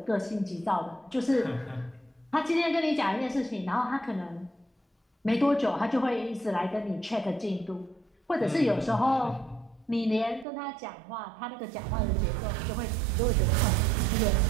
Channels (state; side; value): drops out; left; at 10.5 s